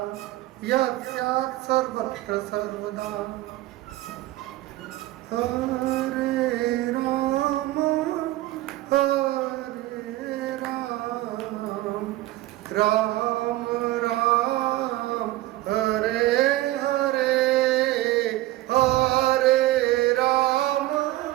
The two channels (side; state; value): left; quieter; 17.1 dB